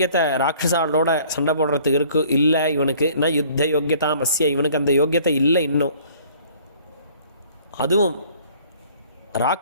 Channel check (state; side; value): inverted; both; correlation -0.54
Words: ராட்சசாலோட சண்டை போடுறதுக்கு இல்லை இவனுக்கு. நான் யுத்த யோக்கியதாமஸ்ய, இவனுக்கு அந்த யோக்கியத்தை இல்லை இன்னும். அதுவும்